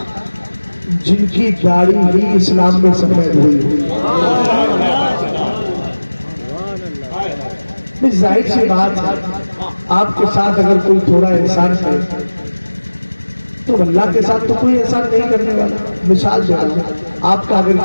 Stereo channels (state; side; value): inverted; both; correlation -1.00